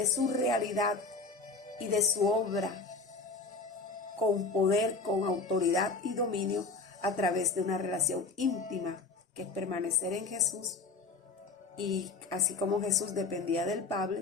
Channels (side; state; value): right; quieter; 4.0 dB